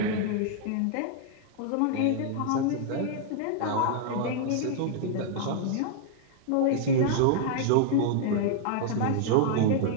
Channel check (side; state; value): both; different; correlation -0.01